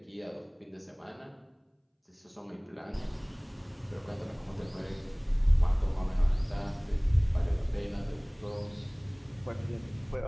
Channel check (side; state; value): both; identical; correlation 1.00